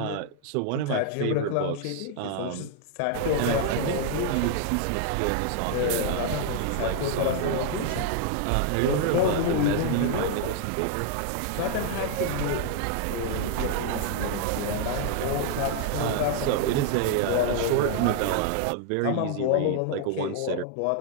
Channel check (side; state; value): both; different; correlation 0.00